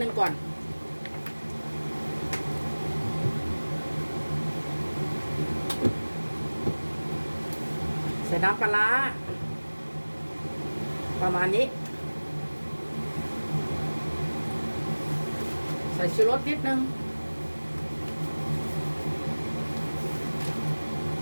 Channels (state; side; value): inverted; both; correlation -1.00